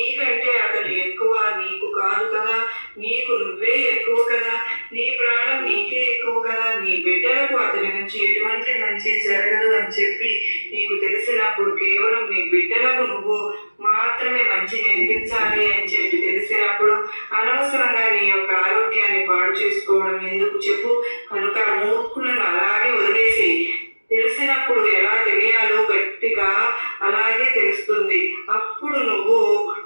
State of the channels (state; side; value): inverted; both; correlation -1.00